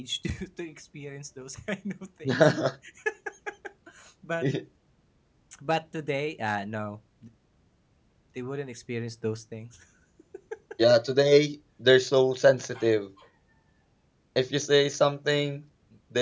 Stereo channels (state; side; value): identical; both; correlation 1.00